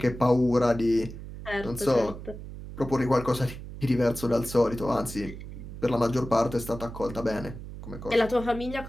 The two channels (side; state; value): right; noise; hum, 11 dB below the sound